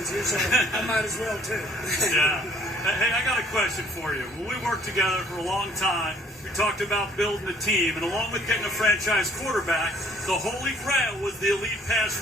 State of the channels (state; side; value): normal; both; correlation 0.58